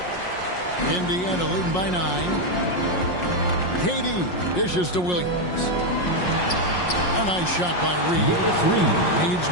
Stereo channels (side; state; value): right; late; 5.5 ms